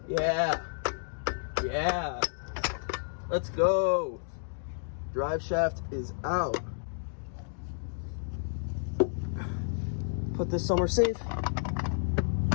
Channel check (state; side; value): silent; right; digital silence